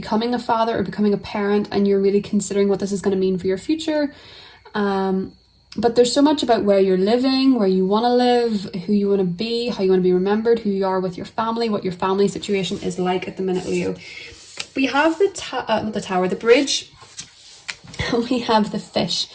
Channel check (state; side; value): identical; both; correlation 1.00